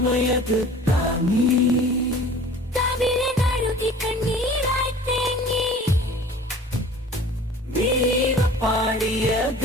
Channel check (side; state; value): both; normal; correlation 0.45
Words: താങ്ങി കവിളെ കഴുകി കണ്ണീരായി തേങ്ങി വീര പാടിയ